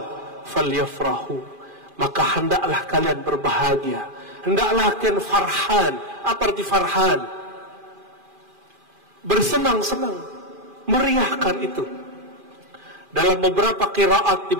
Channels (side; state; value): left; late; 2.4 ms